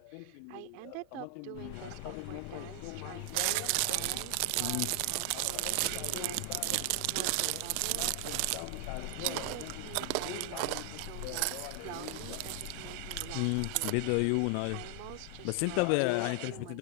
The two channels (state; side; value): different; both; correlation 0.00